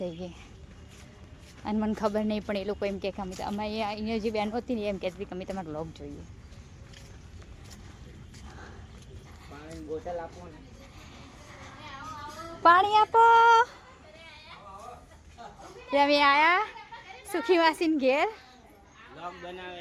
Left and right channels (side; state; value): both; identical; correlation 1.00